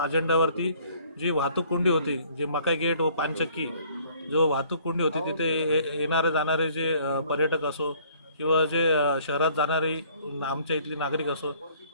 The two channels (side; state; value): both; inverted; correlation -0.58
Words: अजेंड्यावरती जी वाहतूक कोंडी होती, जे मकाई गेट व पानचक्की जो वाहतूक कोंडी होती, तिथे येणारे जाणारे जे पर्यटक असो किंवा जे शहरात जाणारे आमच्या इथली नागरिक असो,